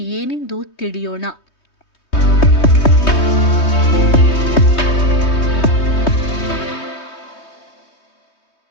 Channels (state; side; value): late; right; 3.2 ms